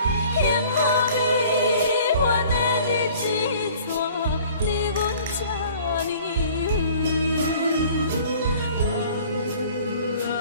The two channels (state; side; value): inverted; both; correlation -0.50